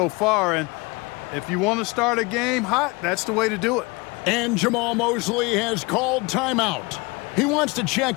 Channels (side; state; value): right; quieter; 25.9 dB